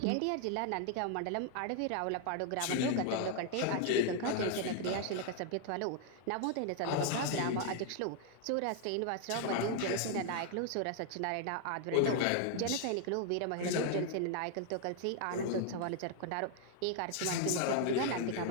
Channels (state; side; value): different; both; correlation 0.00